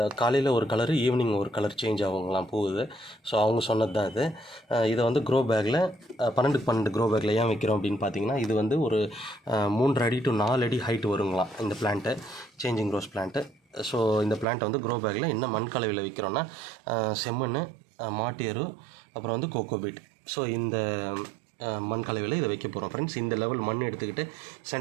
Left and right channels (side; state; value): left; drops out; at 14.5 s